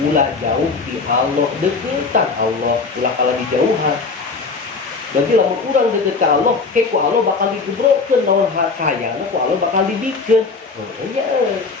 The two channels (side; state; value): right; quieter; 4.4 dB